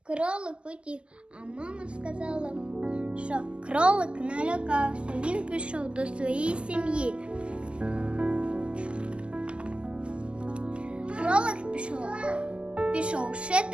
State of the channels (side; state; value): left; late; 0.058 ms